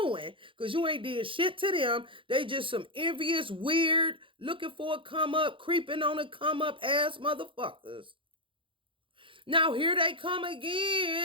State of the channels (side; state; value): left; late; 0.25 ms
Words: because you ain't did shit to them. They just some envious, weird, looking for a come up, creeping on a come up ass motherfuckers. Now here they come